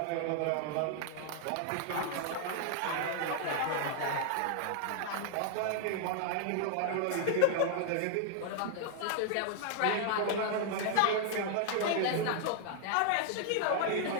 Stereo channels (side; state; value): both; different; correlation -0.01